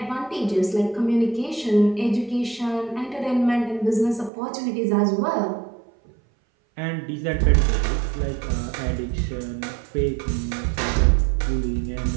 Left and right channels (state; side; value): drops out; left; at 4.3 s